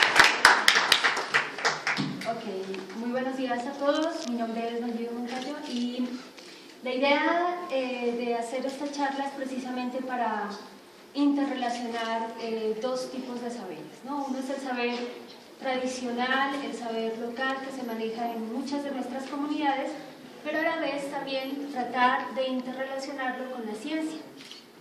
Muy buenos días a todos, mi nombre es Nayibe Moncayo y la idea de hacer esta charla es precisamente para interrelacionar dos tipos de saberes, ¿no? Uno es el saber tradicional, el saber local que se maneja en muchas de nuestras comunidades, pero a la vez también tratar de interrelacionarlo con la ciencia.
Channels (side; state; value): both; identical; correlation 1.00